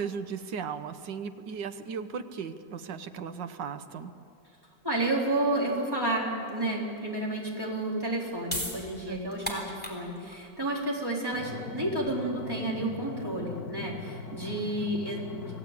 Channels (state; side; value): normal; both; correlation -0.11